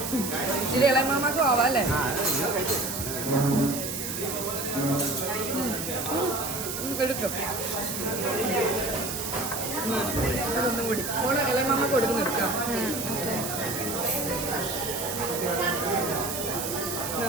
ഇച്ചിരി ഇളയമാമാക്കും ആവാം അല്ലേ? എടുക്കും അതൊന്നും കൂടി ഫോണ് ഇളയമാമ കൊടുക്കുന്ന എടുക്കാം.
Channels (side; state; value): right; noise; hiss, 5 dB below the sound